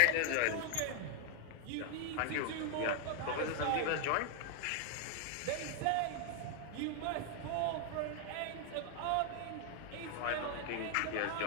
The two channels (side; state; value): both; different; correlation 0.00